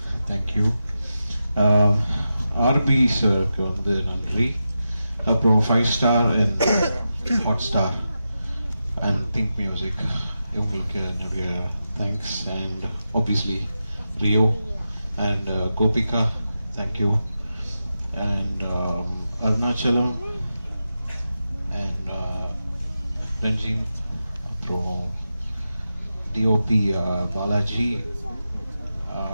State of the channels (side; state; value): both; inverted; correlation -0.90